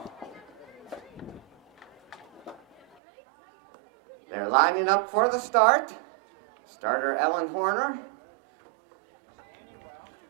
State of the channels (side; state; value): left; drops out; at 3.0 s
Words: They're lining up for the start. Starter Ellen Horner